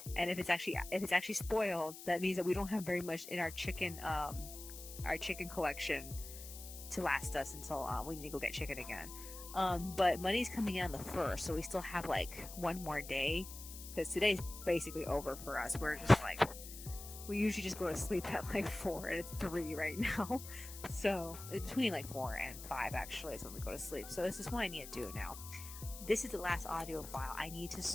and if it's actually spoiled, that means that we don't have very much in our chicken collection to last us until we need to go get chicken again. But money's coming in on the 1st, so we still have like one more day, because today's basically over for us. We're just like, we usually just go to sleep at like 4 and it's 3 right now. So between like 4 and 5 actually is when we go to sleep. So this is what I need to do now. This is the last audio file. I need to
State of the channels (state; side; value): noise; left; hiss, 12 dB below the sound